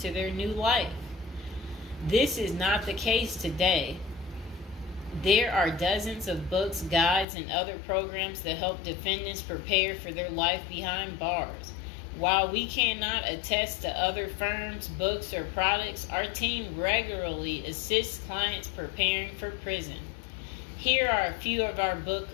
their new life. This is not the case today. There are dozens of books, guides, and other programs that help defendants prepare for their life behind bars. While we cannot attest to other firms, books, or products, our team regularly assists clients preparing for prison. Here are a few of our book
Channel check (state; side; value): drops out; right; at 7.2 s